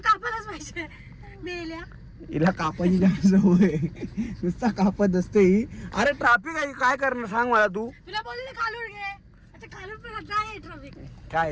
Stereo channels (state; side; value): identical; both; correlation 1.00